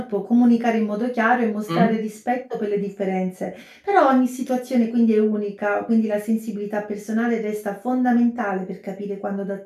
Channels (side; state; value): both; identical; correlation 1.00